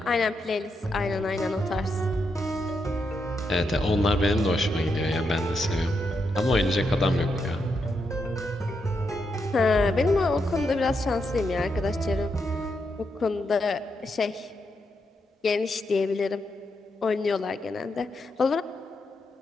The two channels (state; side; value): normal; both; correlation 0.83